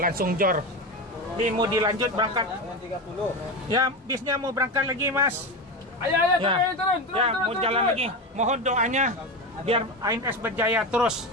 jor. Mau dilanjut berangkat. Ya, bisnya mau berangkat lagi, Mas. Ayo, turun. Mau jalan lagi. Mohon doanya biar ANS berjaya terus.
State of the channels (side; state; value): both; normal; correlation 0.20